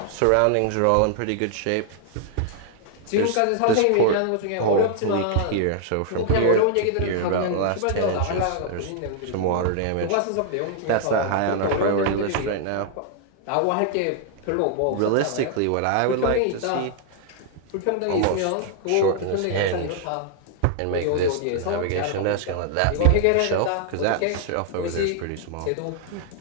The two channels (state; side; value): different; both; correlation 0.00